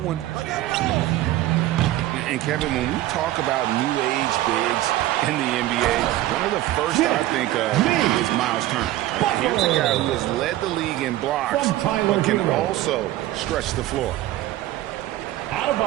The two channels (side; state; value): left; quieter; 15.2 dB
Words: one. And Kevin, when we talk about new age bigs in the NBA, one of the first I think of is Miles Turner. Here's a guy who has led the league in blocks, but can also stretch the floor. Out of